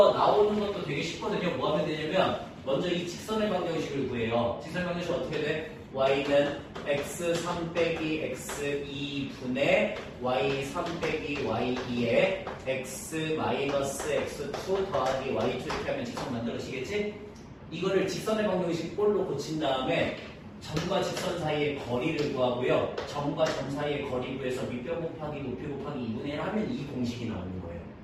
나오는 것도 되게 쉽거든요. 뭐 하면 되냐면 먼저 이 직선의 방정식을 구해요. 직선의 방정식 어떻게 돼? y는 x3 빼기 x2분의 y3 빼기 y2에 x 마이너스 x2 더하기 y2 이렇게 하면 직선 만들어지겠지? 이거를 직선의 방정식 꼴로 고친 다음에 점과 직선 사이의 거리를 구하고요. 점과 점 사이의 거리 구해서 밑변 곱하기 높이 곱하기 2분의 1 하면 이 공식이 나오는 거예요.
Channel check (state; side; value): identical; both; correlation 1.00